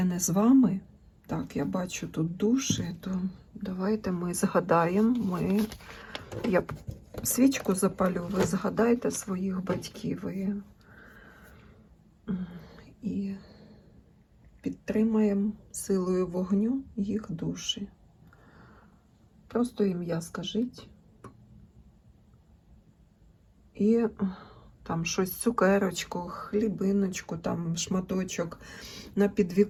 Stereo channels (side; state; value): both; identical; correlation 1.00